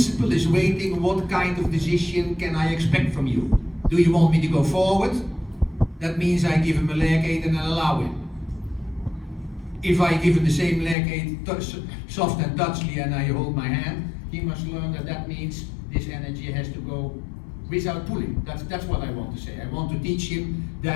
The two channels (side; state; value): right; drops out; at 11.0 s